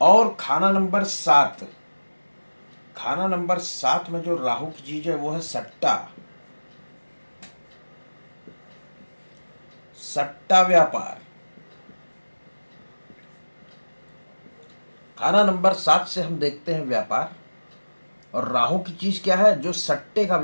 और खाना नंबर 7। खाना नंबर 7 में जो राहु की चीज है वो है सट्टा। सट्टा व्यापार। खाना नंबर 7 से हम देखते हैं व्यापार। और राहु की चीज क्या है? जो सट्टे का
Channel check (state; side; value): inverted; both; correlation -1.00